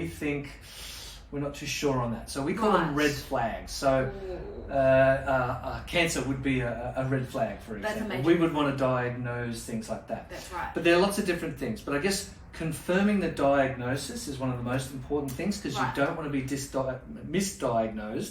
think we're not too sure on that. So we call them Right. red flags. So cancer would be a red flag, for That's example. amazing. We would want to diagnose things like that. That's right. But there are lots of different things. But I guess confirming the diagnosis is one of the most important things, because Right. you don't want to be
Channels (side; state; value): both; identical; correlation 1.00